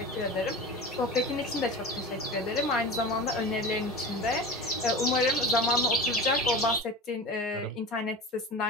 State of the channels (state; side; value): normal; both; correlation 0.31